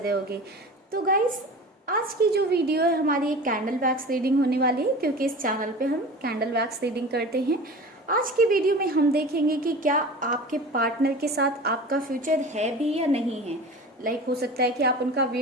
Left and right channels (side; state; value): both; normal; correlation 0.36